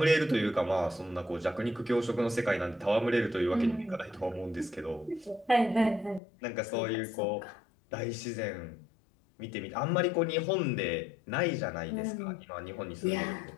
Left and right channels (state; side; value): drops out; right; at 6.2 s